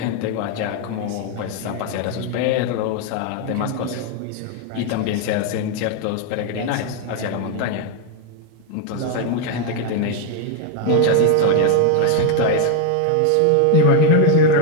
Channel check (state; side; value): different; both; correlation 0.01